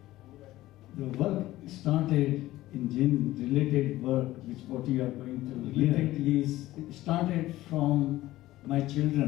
The work started in Jain-related work, which what you are going to related is it started from my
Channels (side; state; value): right; quieter; 16.3 dB